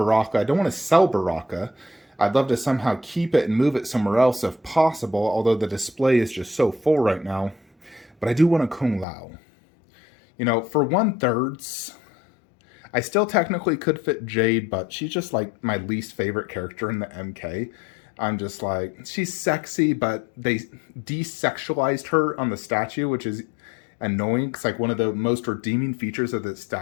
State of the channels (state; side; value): drops out; right; at 9.1 s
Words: I don't want to sell Baraka. I'd love to somehow keep it and move it somewhere else if possible, although the display is just so full right now. But I do want a Kung Lao. For 1/3, I still technically could fit Jade, but she's just like my least favorite character in the MK. I'm just like, she's sexy, but they desexualized her on the statue, which is annoying, because one of the most redeeming features of the